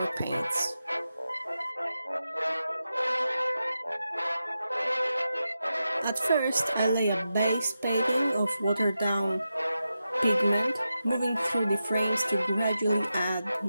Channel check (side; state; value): both; inverted; correlation -0.90